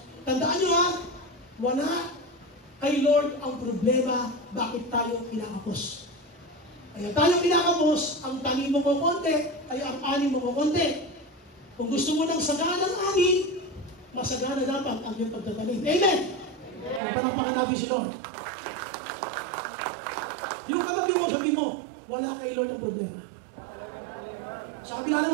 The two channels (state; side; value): drops out; left; at 17.0 s